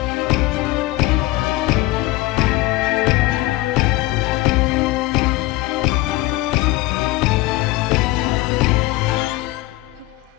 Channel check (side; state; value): right; quieter; 19.1 dB